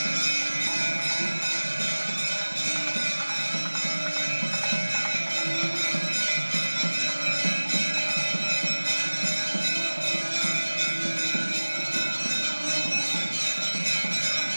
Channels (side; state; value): both; inverted; correlation -1.00